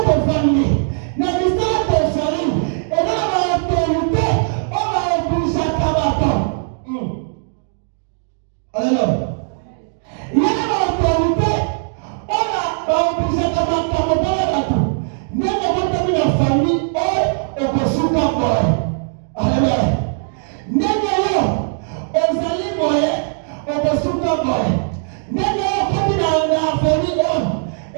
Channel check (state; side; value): silent; left; digital silence